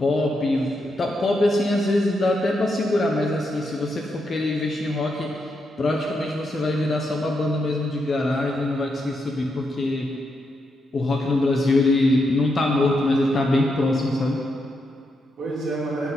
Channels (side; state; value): both; normal; correlation 0.82